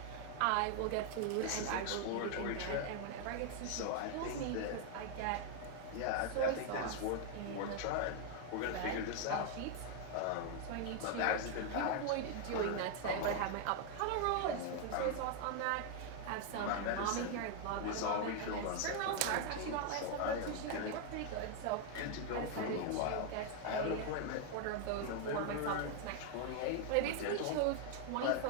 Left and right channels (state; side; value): different; both; correlation 0.00